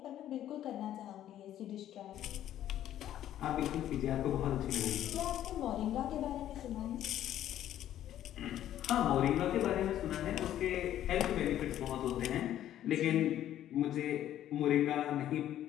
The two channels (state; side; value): quieter; right; 11.9 dB